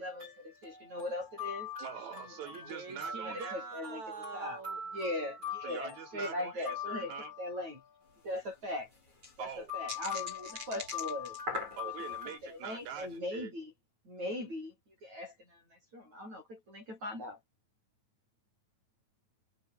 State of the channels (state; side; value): late; left; 9.2 ms